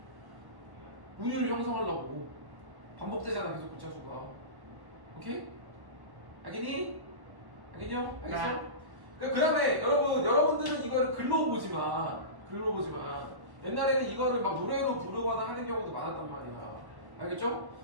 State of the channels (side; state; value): left; late; 1.1 ms